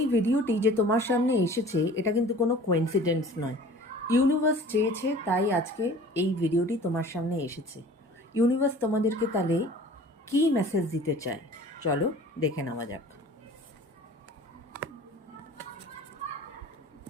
ভিডিওটি যে তোমার সামনে এসেছে এটা কিন্তু কোনো কোইন্সিডেন্স নয়। ইউনিভার্স চেয়েছে তাই আজকে এই ভিডিওটি তোমার সামনে এসেছে। ইউনিভার্স তোমাদেরকে তাহলে কী মেসেজ দিতে চায় চলো দেখে নেওয়া যাক।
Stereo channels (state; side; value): normal; both; correlation 0.46